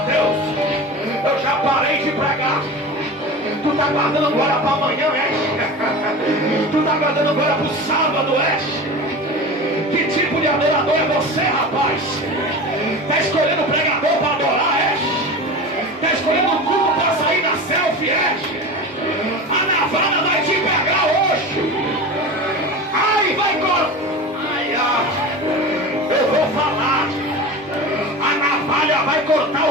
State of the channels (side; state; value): both; normal; correlation 0.31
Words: Deus, eu já parei de pregar. Tu tá guardando glória para amanhã, é? Tu tá guardando glória pro sábado, é? Que tipo de adorador é você, rapaz? Tá escolhendo pregador para adorar, é? Tá escolhendo um culto para sair da selfie, é? A navalha vai te pegar hoje. Ai, vai cortar. Eu vou falar. A navalha vai cortar